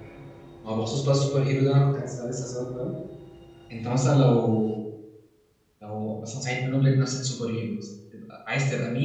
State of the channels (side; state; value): both; identical; correlation 1.00